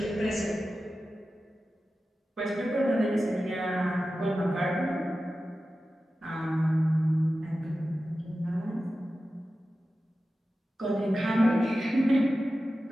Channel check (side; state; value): both; normal; correlation 0.94